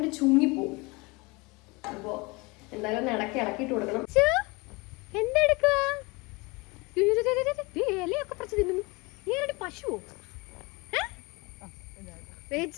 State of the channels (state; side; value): quieter; right; 25.9 dB